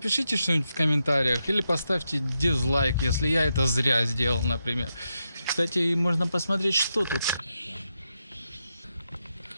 что-нибудь в комментариях или поставьте дизлайк, если я это зря сделал, например. Кстати, можно посмотреть, что тут.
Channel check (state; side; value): inverted; both; correlation -0.85